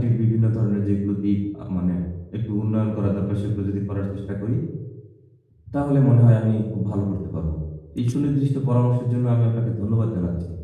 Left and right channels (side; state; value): both; identical; correlation 1.00